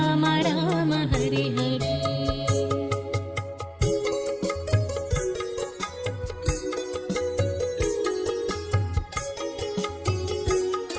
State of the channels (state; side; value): identical; both; correlation 1.00